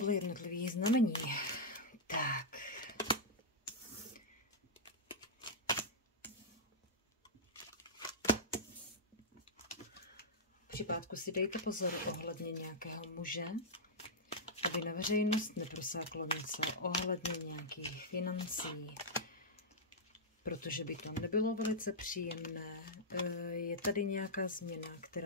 jednotlivých znamení. Tak. Při pátku si dejte pozor ohledně nějakého muže, aby na veřejnost neprosáklo něco ohledně nějakých financí, protože by to nebylo velice příjemné. Je tady nějaká změna,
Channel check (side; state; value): both; normal; correlation -0.08